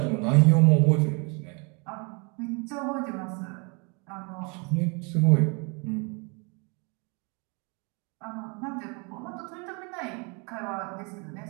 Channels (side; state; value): left; quieter; 32.5 dB